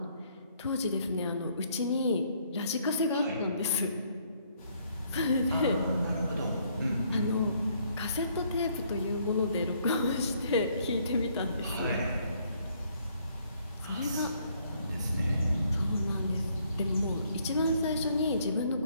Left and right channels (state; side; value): inverted; both; correlation -0.67